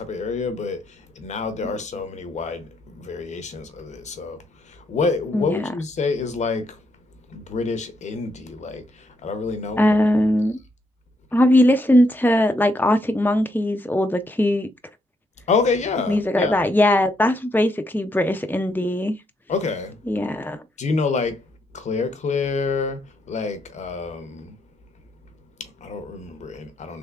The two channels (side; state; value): both; normal; correlation 0.77